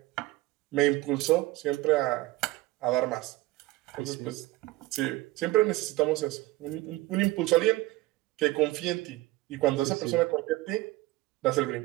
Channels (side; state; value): left; quieter; 18.8 dB